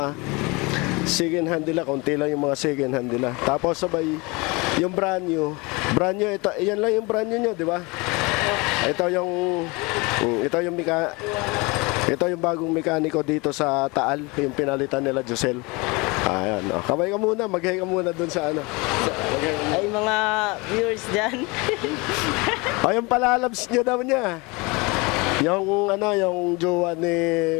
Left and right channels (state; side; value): quieter; right; 26.3 dB